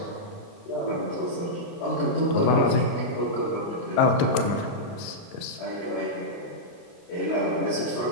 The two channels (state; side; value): late; right; 29 ms